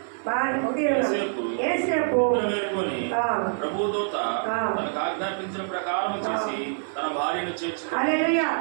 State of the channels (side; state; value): left; silent; 56 dB below the other